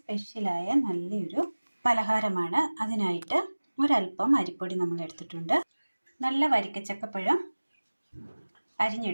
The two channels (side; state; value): both; inverted; correlation -1.00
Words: നല്ലൊരു പലഹാരമാണ്. അതിനായിട്ട് ഒരല്പം അരിപ്പൊടി നമ്മൾ എടുത്തിട്ടുണ്ട്, നല്ല വരിക്കച്ചക്കപ്പഴം